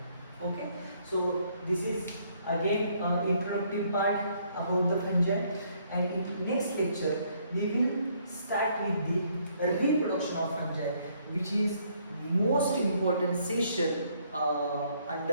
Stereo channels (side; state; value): both; inverted; correlation -0.67